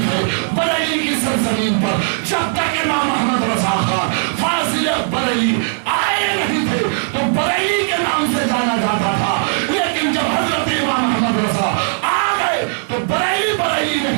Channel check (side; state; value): left; silent; digital silence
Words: ہے۔ بریلی کی سرزمین پر جب تک امام احمد رضا خان فاضل بریلی آئے نہیں تھے تو بریلی کے نام سے جانا جاتا تھا، لیکن جب حضرت امام احمد رضا آ گئے تو بریلی